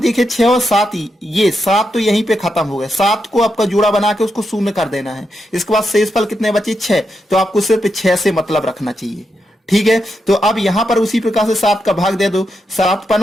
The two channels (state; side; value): normal; both; correlation 0.84